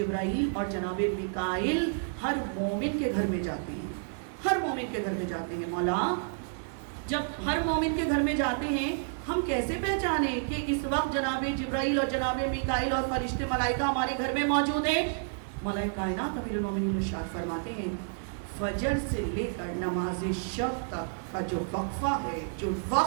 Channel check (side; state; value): left; silent; digital silence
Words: اور جناب میکائیل ہر مومن کے گھر میں جاتے ہیں. ہر مومن کے گھر میں جاتے ہیں. مولا جب ہر مومن کے گھر میں جاتے ہیں، ہم کیسے پہچانیں کہ اس وقت جناب جبرائیل اور جناب میکائیل اور فرشتے ملائکہ ہمارے گھر میں موجود ہیں؟ مولا کائنات امیر المومنین ارشاد فرماتے ہیں فجر سے لے کر نماز شب تک کا جو وقفہ ہے، جو